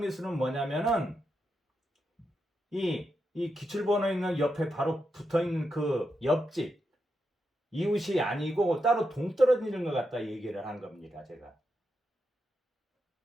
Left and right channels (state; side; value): normal; both; correlation 0.85